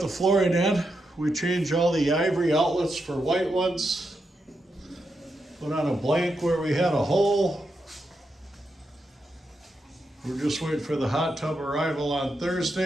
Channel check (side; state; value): both; normal; correlation 0.85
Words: the flooring in. We changed all the ivory outlets for white ones. Put on a blank where we had a hole. We're just waiting for the hot tub arrival on